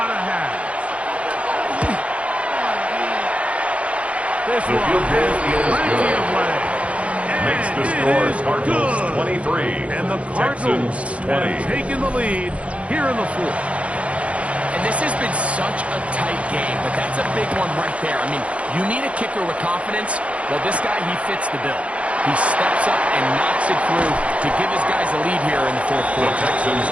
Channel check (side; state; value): left; late; 0.063 ms